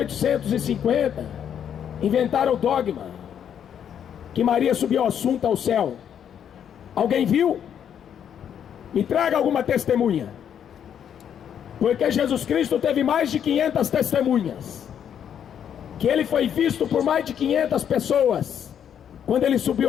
inventaram o dogma que Maria subiu assunto ao céu. Alguém viu? Me traga alguma testemunha. Porque Jesus Cristo teve mais de 500 testemunhas, que ele foi visto por mais de 500 pessoas, quando ele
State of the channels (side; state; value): right; quieter; 8.9 dB